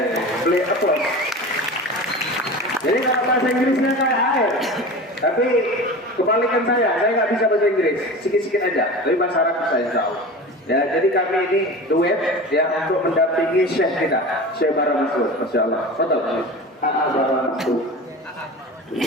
beliau applause. Jadi kalau bahasa Inggrisnya kayak air, tapi kebalikan saya nggak bisa bahasa Inggris, sikit-sikit aja, tapi bahasa Arab saya tahu. Ya, jadi kami ini duet ya untuk mendampingi Syekh kita, Syekh Bara Masud. Masya Allah. Betul. Bara Masud.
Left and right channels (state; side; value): normal; both; correlation 0.33